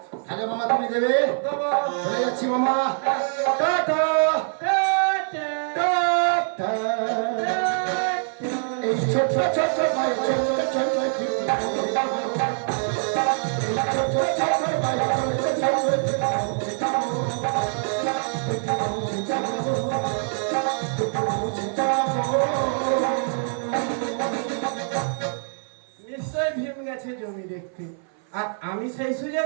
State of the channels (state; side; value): silent; left; 57 dB below the other